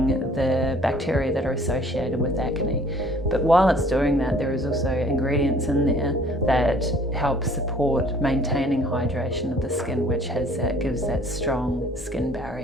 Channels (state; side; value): normal; both; correlation 0.55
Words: the bacteria that are associated with acne. But while it's doing that, there is also ingredients in there that help support maintaining hydration of the skin, which gives that strong skin